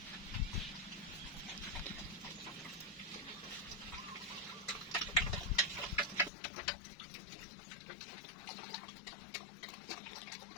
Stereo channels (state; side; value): drops out; right; at 6.3 s